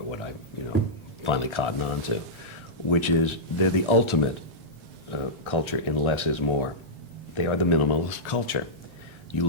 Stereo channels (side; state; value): both; normal; correlation -0.13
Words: what I, finally cottoned on to, which is they're the ultimate culture in less is more. They are the minimalist culture. You